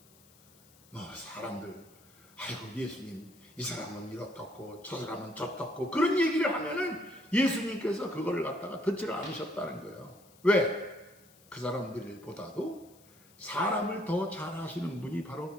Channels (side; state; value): left; noise; hiss, 27 dB below the sound